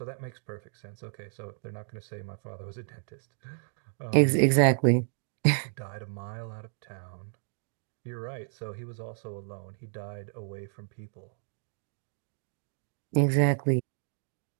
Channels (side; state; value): left; silent; digital silence